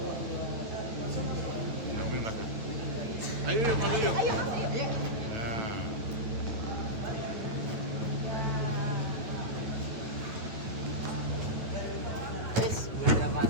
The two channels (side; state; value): left; late; 9.3 ms